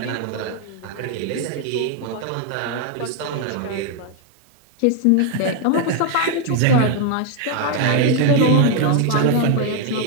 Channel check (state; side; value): different; both; correlation 0.01